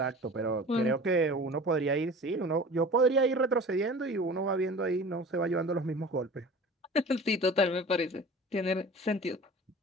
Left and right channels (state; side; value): normal; both; correlation 0.40